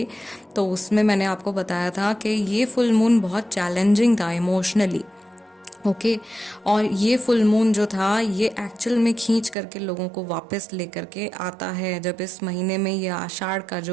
तो उसमें मैंने आपको बताया था कि ये फुल मून बहुत चैलेंजिंग था इमोशनली। ओके, और ये फुल मून जो था ये एक्चुअल में खींच करके लोगों को वापस लेकर के आता है। जब इस महीने में ये आषाढ़ का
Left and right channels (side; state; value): left; drops out; at 9.6 s